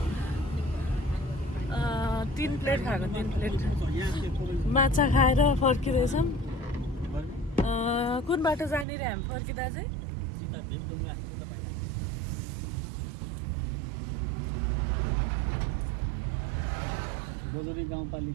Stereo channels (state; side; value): drops out; left; at 8.8 s